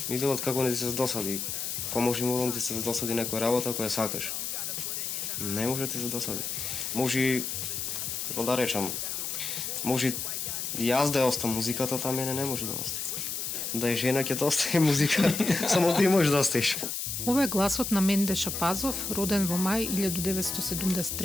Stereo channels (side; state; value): left; noise; hiss, 3 dB below the sound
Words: ми велат како не ти се досади. Па може да ти се досади некоја работа која сакаш. Не може да ти се досади. Може, како да речам, може јас да ја остам музиката, та мене не може да остане. Да е жена ќе да остане музика, само ти можеш да остеш. Ова е гласот на Менде Шапазов, роден во мај